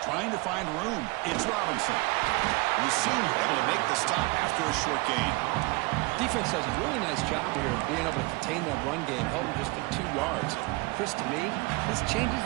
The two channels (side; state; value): left; quieter; 25.0 dB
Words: Trying to find room. It's Robinson. And the senior able to make the stop after a short gain. Defense does a really nice job here of being able to contain that run game, held him just at 2 yards. Chris, to me, this changes